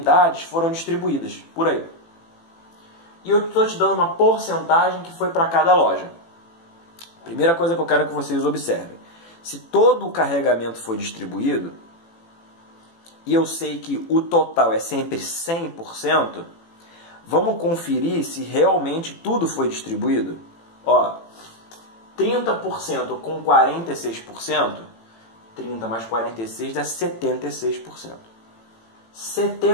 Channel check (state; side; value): late; right; 18 ms